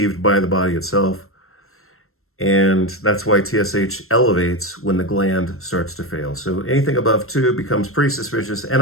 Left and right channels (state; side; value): late; right; 0.62 ms